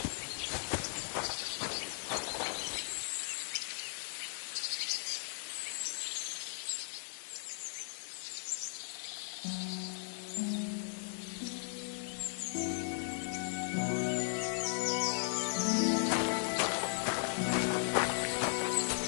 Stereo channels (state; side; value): silent; right; digital silence